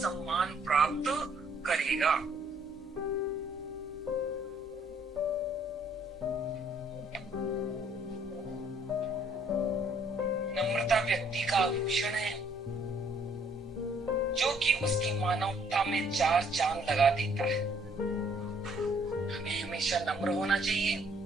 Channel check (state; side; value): normal; both; correlation 0.64